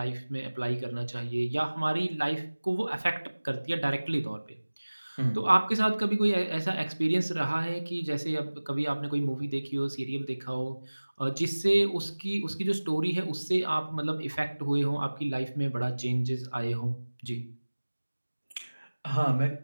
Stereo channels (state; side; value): inverted; both; correlation -1.00